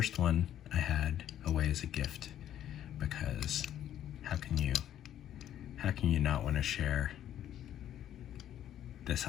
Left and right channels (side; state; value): right; quieter; 11.2 dB